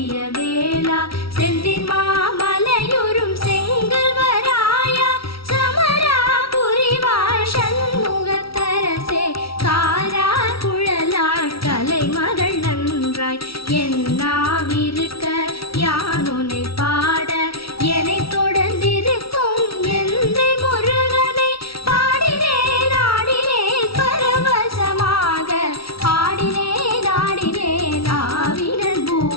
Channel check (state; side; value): late; right; 0.75 ms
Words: வேளா செந்தின் மாமலையுறும் செங்கல்வராயா சமராபுரி வாழ் சண்முகத்தரசே. காரா குழலாள் கலைமகள் நன்றாய் என்னாவிருக்க யானுனை பாட என்னை தொடர்ந்திருக்கும் எந்தை முருகனை பாடினேன் ஆடினேன் பரவசமாக ஆடினேன் ஆடினேன் ஆவினன்